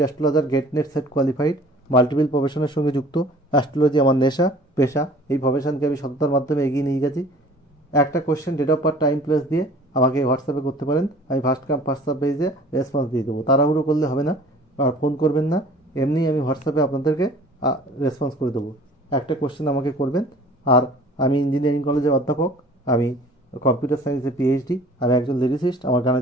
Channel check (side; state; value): both; normal; correlation 0.48